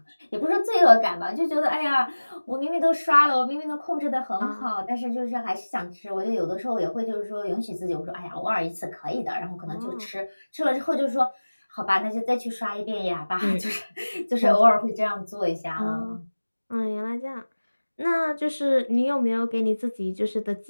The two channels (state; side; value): inverted; both; correlation -1.00